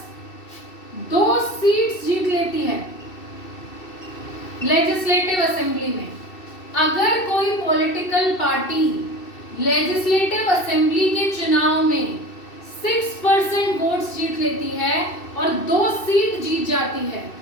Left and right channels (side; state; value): right; late; 2.7 ms